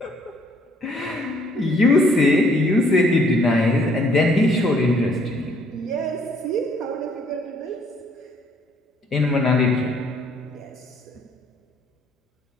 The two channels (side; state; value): both; normal; correlation 0.64